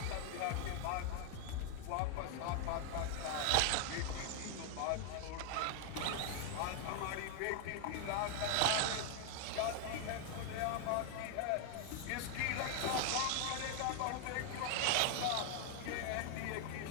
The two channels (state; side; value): different; both; correlation 0.01